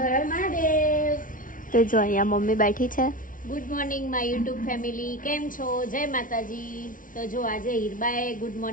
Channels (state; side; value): late; right; 0.39 ms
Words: હર મહાદેવ. તો જો અહીંયા મમ્મી બેઠી છે. Good morning my YouTube family, કેમ છો? જય માતાજી. તો જો આજે હિરબાએ ગુડ